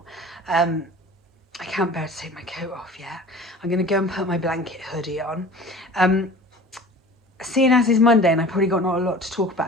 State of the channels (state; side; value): normal; both; correlation 0.41